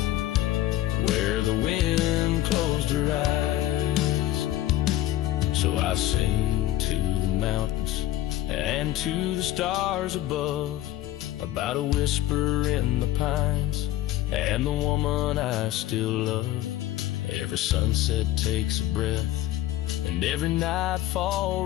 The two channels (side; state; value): right; quieter; 14.3 dB